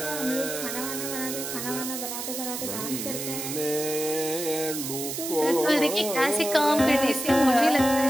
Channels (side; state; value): right; noise; hiss, 5 dB below the sound